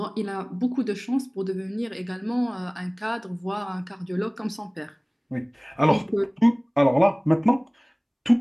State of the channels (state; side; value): identical; both; correlation 1.00